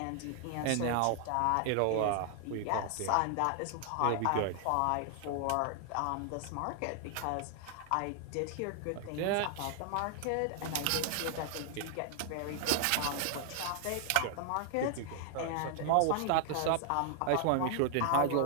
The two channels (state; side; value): different; both; correlation 0.00